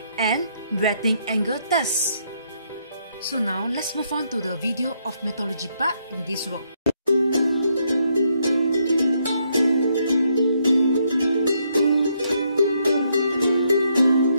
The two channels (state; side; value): inverted; both; correlation -0.75